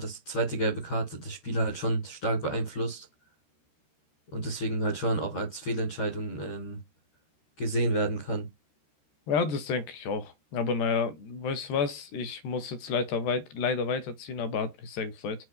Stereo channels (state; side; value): late; right; 13 ms